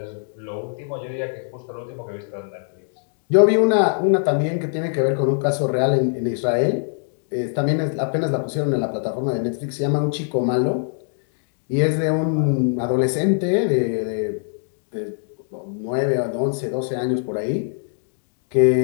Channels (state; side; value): silent; right; digital silence